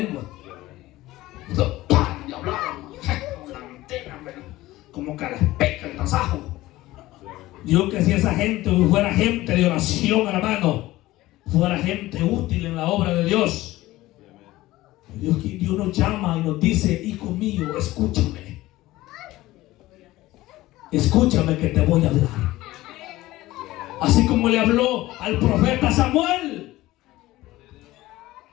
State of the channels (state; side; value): quieter; right; 17.3 dB